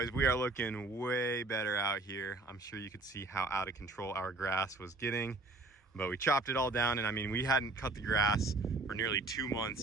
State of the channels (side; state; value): left; quieter; 3.2 dB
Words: we are looking way better out here. I'm sure you could see how out of control our grass was getting, but we chopped it all down. And I mean, we hadn't cut the grass for nearly 2